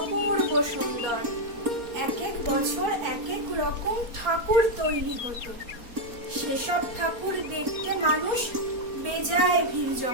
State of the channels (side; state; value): left; late; 4.2 ms